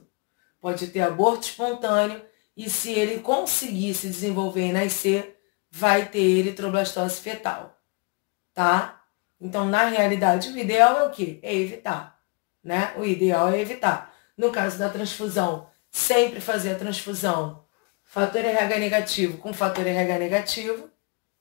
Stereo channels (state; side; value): quieter; right; 31.0 dB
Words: Pode ter aborto espontâneo. E se ele conseguir se desenvolver e nascer, vai ter eritroblastose fetal. Tá? Então, na realidade, o ideal é o quê? É evitar. Né? O ideal é evitar. No caso da transfusão, sempre fazer a transfusão fator RH negativo com fator RH negativo.